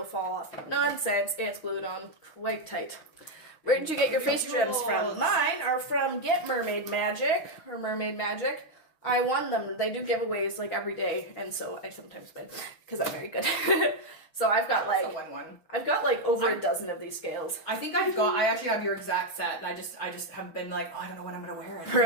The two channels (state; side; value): late; right; 6.3 ms